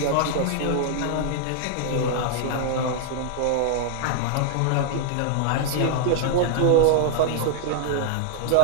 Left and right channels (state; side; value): different; both; correlation -0.01